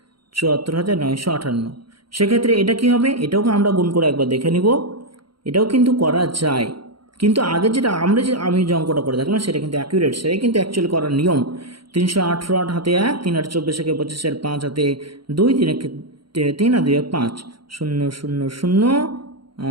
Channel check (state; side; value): late; left; 0.73 ms